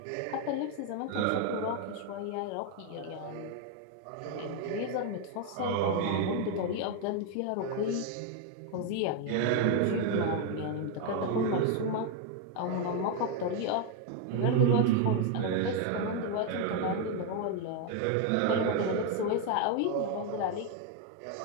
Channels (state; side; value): different; both; correlation 0.01